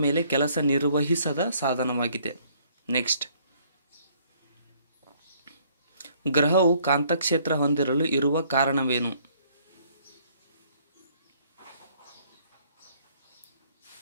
ಮೇಲೆ ಕೆಲಸ ನಿರ್ವಹಿಸದ ಸಾಧನವಾಗಿದೆ. ನೆಕ್ಸ್ಟ್, ಗ್ರಹವು ಕಾಂತಕ್ಷೇತ್ರ ಹೊಂದಿರಲು ಇರುವ ಕಾರಣವೇನು?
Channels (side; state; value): both; inverted; correlation -0.63